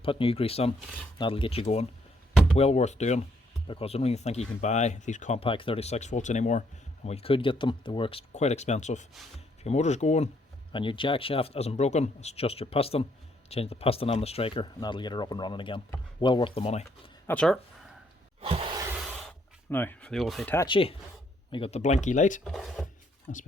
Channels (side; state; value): both; normal; correlation 0.70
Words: put new grease on, that'll get you going. Well worth doing, because I don't even think you can buy these compact 36 volts anymore. And when you could get them, they were quite expensive. If your motor's going and your jack shaft isn't broken, it's just your piston, change the piston on the striker and that'll get her up and running again. Well worth the money. That's her. Now for the old Hitachi, we got the blinky light. That's